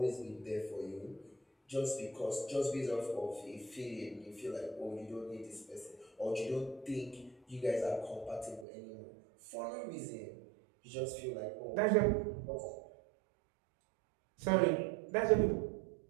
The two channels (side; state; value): left; drops out; at 8.7 s